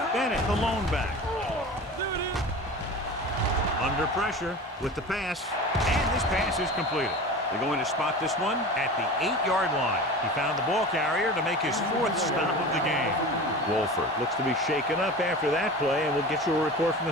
Bennett, the lone back. Under pressure with the pass, and this pass is completed. They're going to spot this one at the 8-yard line. He found the ball carrier to make his 4th stop of the game. Wolford looks to be shaken up after that play, and we'll get you a report from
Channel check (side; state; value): both; normal; correlation 0.34